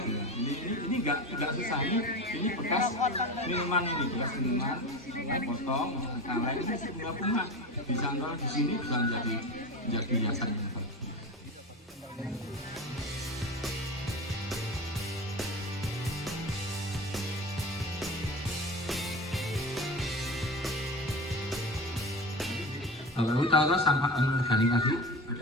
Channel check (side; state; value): both; normal; correlation 0.28